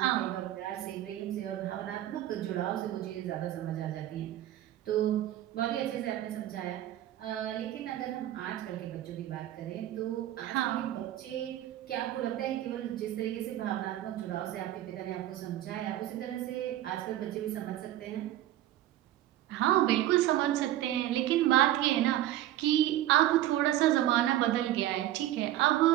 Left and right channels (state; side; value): quieter; left; 13.5 dB